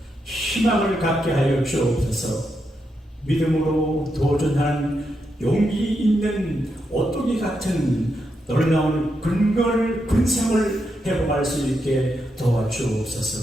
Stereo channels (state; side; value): normal; both; correlation 0.83